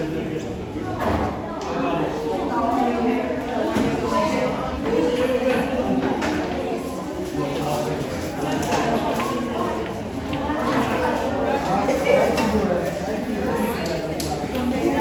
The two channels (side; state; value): both; identical; correlation 1.00